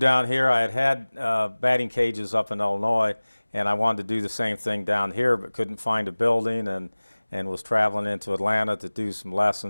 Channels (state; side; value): inverted; both; correlation -1.00